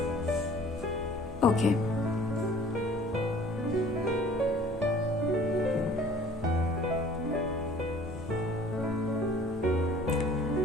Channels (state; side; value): normal; both; correlation 0.51